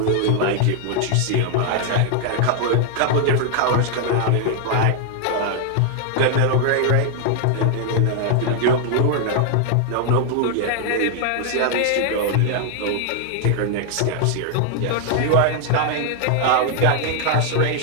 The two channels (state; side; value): different; both; correlation 0.00